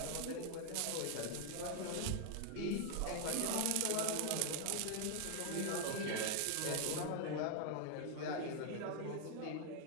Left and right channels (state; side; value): different; both; correlation 0.00